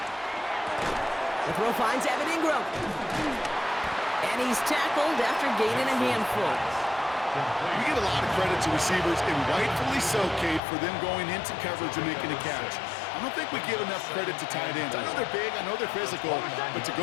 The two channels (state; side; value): drops out; right; at 10.6 s